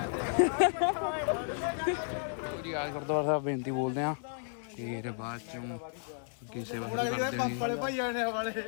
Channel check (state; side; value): silent; right; 56 dB below the other